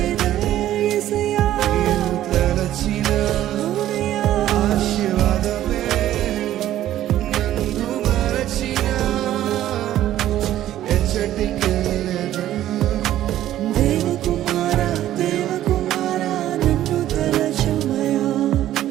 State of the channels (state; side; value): quieter; left; 13.0 dB